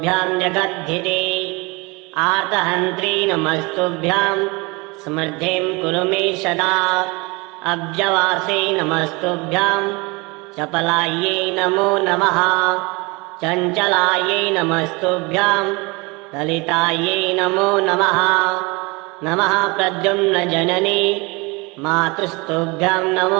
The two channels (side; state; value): left; quieter; 26.6 dB